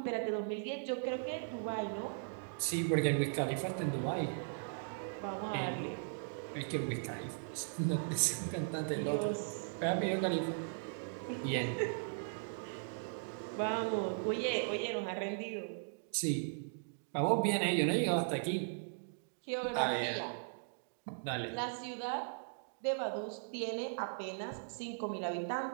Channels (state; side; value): silent; left; digital silence